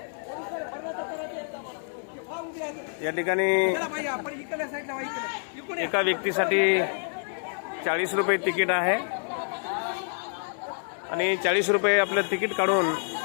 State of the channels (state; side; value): silent; right; 60 dB below the other